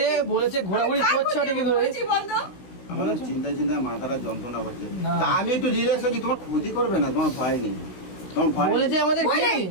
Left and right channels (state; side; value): late; right; 16 ms